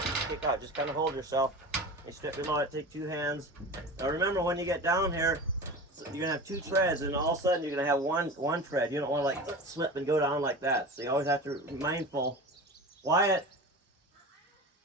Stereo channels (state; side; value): normal; both; correlation 0.32